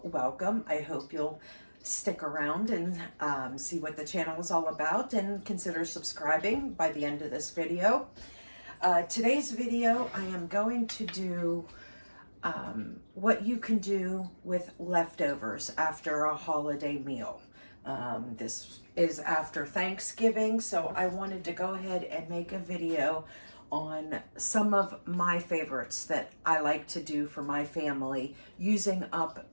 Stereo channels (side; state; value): both; inverted; correlation -1.00